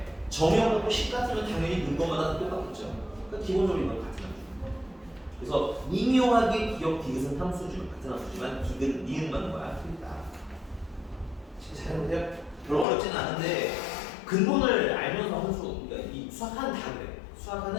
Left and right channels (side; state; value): right; drops out; at 12.9 s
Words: 정형하고 식 같으면 당연히 넣은 것마다 똑같겠죠. 그러니까 기본적으로 이건 같은 함수. 그래서 미묘하게 기억 디귿은 함수죠. 같은 함수지만 디귿, 니은만 거야. 틀리다. 잘해보세요. 별로 어렵지는 않은데 근본을 알면서 함수, 그러니까 이 수학하는 다 그래.